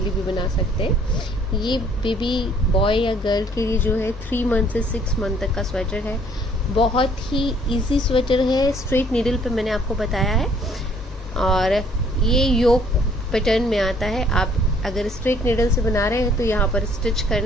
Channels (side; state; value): both; normal; correlation 0.61